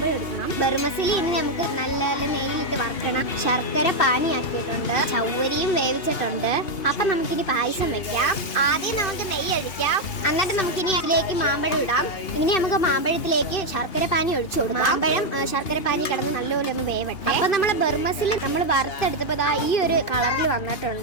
എടുക്കണം. ബർമസിലി ഇനി നമുക്ക് നല്ല നെയ്യിലിട്ട് വറക്കണം. ശർക്കര പാനിയാക്കിയിട്ടുണ്ട്, ചവ്വരിയും വേവിച്ചിട്ടുണ്ട്. അപ്പൊ നമുക്കിനി പായസം വെക്കാം. ആദ്യം നമുക്ക് നെയ്യ് ഒഴിക്കാം, എന്നിട്ട് നമുക്കിനി അതിലേക്ക് മാമ്പഴം ഇടാം. ഇനി നമുക്ക് മാമ്പഴത്തിലേക്ക് ശർക്കര പാനി ഒഴിച്ചു കൊടുക്കാം. മാമ്പഴം ശർക്കര പാനി കിടന്ന് നല്ലപോലെ ഒന്ന് വേവട്ടെ. അപ്പൊ നമ്മളെ ബർമസിൽ നമ്മൾ വറുത്തെടുത്തപ്പോ ഈ ഒരു കളറിൽ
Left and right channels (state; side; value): late; right; 2.8 ms